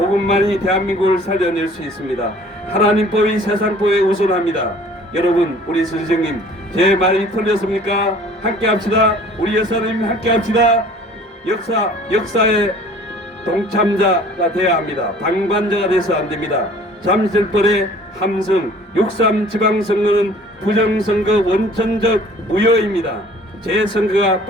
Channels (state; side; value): normal; both; correlation 0.51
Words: 대한민국을 살려낼 수 있습니다. 하나님 법이 세상 법에 우선합니다. 여러분, 우리 선생님 제 말이 틀렸습니까? 함께합시다. 우리 여사님 함께합시다. 역사의 동참자가 되어야 합니다. 방관자가 돼서 안 됩니다. 잠실벌의 함성 6.3 지방선거는 부정선거 원천적 무효입니다. 재선거가